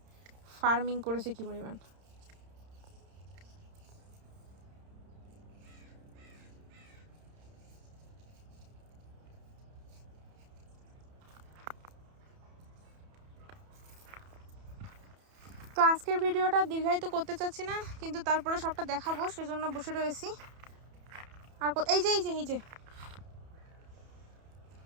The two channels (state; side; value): late; left; 31 ms